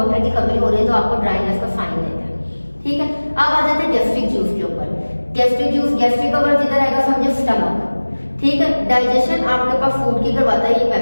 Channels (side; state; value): both; inverted; correlation -1.00